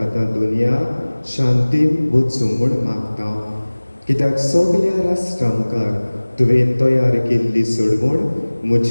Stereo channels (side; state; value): both; inverted; correlation -1.00